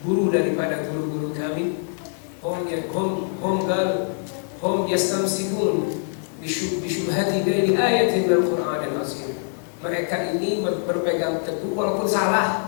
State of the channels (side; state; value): right; silent; 60 dB below the other